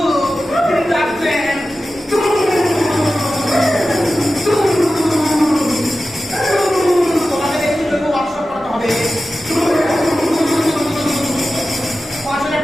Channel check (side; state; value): both; normal; correlation 0.94